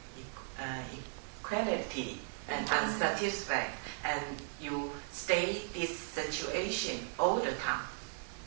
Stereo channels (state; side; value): silent; left; 53 dB below the other